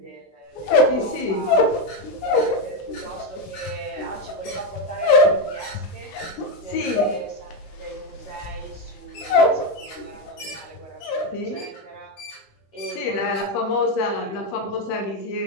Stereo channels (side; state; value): right; late; 15 ms